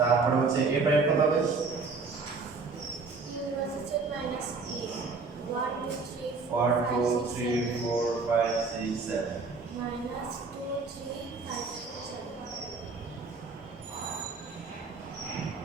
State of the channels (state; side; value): quieter; left; 4.3 dB